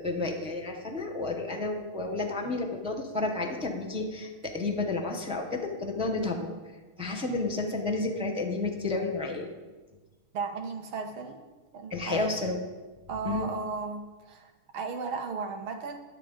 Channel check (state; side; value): late; left; 6.4 ms